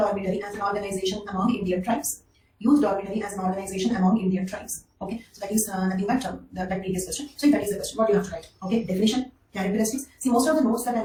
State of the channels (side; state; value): both; identical; correlation 1.00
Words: as an organization among Indian tribes. Youth dormitory as an organization among Indian tribes. Okay, so that is nothing but that previous question. So if that is the question, what do you have to write? Okay, definition, characteristics. See, most of the notes that I